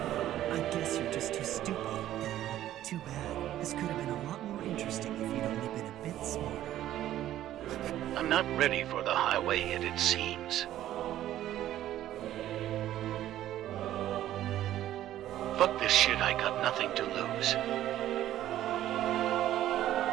I guess you're just too stupid. Too bad. This could have been a lot more interesting if you'd only been a bit smarter. I'm not ready for the highway yet, it seems. Fuck this shit, I got nothing to lose.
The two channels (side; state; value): left; quieter; 12.9 dB